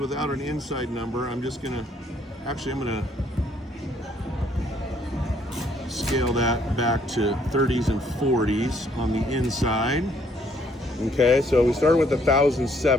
an inside number, I'm gonna scale that back to 30s and 40s on the inside. Okay, so we started with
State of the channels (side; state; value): both; normal; correlation 0.66